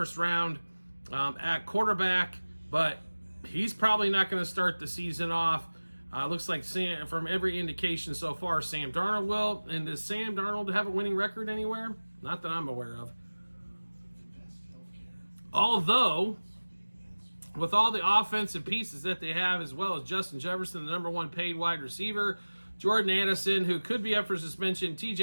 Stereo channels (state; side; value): inverted; both; correlation -1.00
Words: round at quarterback, but he's probably not going to start the season off. Looks like from every indication so far, Sam Darnold will. And does Sam Darnold have a winning record anywhere? Not that I'm aware of. Although, with all the offensive pieces that they have, as well as Justin Jefferson, the number one paid wide receiver, Jordan Addison, who could be up for suspension,